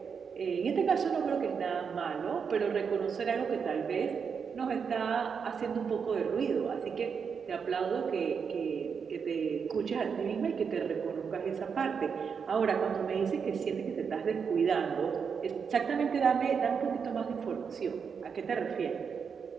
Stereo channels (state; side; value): quieter; left; 6.3 dB